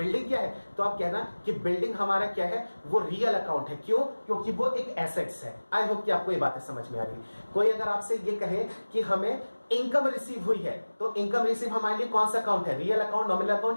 क्या है, तो आप कहना कि बिल्डिंग हमारा क्या है, वो रियल अकाउंट है। क्यों, क्योंकि वो एक एसेट्स है। आई होप कि आपको ये बातें समझ में आ रही है। कोई अगर आपसे ये कहे कि हमें इनकम रिसीव हुई है, तो इनकम रिसीव हमारे लिए कौन सा अकाउंट है, रियल अकाउंट, नॉमिनल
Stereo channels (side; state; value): both; inverted; correlation -1.00